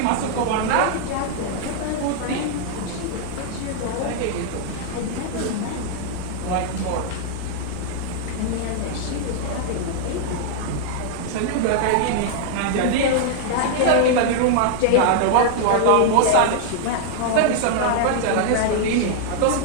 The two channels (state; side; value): different; both; correlation -0.01